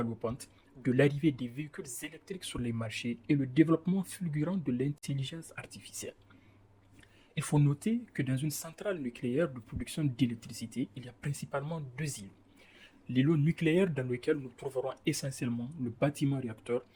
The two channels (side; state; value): both; identical; correlation 1.00